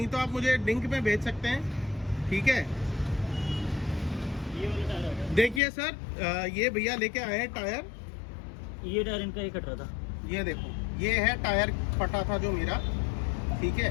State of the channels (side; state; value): right; drops out; at 5.6 s